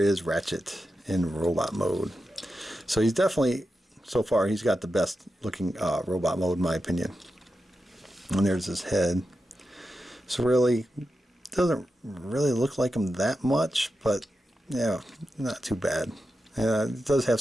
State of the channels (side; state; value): both; normal; correlation 0.90